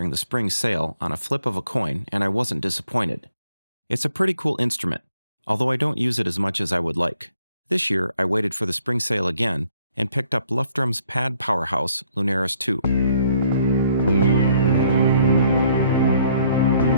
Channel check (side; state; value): both; inverted; correlation -0.65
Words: the spring sale on a flip of a coin, and I wasn't disappointed. It's a pretty cool instrument, although I don't use it as much as I would like. This year, I waited for the spring sale again and picked up Luftrum's pad powerhouse, Lunaris 2.